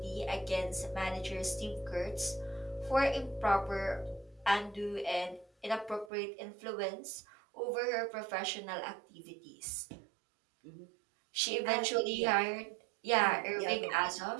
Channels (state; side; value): drops out; left; at 6.1 s